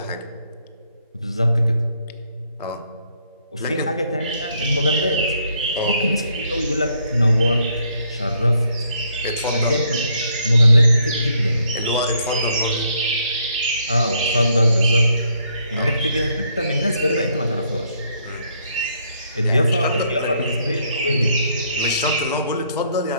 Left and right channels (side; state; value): both; inverted; correlation -0.71